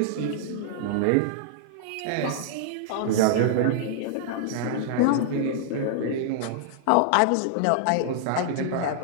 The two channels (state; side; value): different; both; correlation -0.01